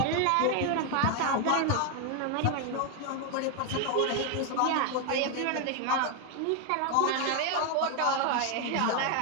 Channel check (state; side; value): different; both; correlation 0.01